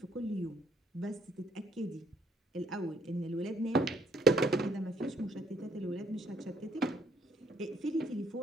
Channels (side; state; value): both; normal; correlation 0.67